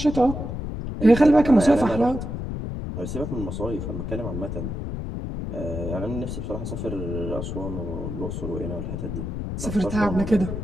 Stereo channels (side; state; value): left; noise; rumble, 5 dB below the sound